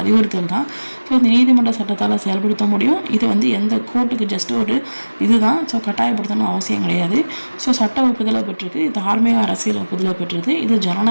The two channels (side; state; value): both; inverted; correlation -1.00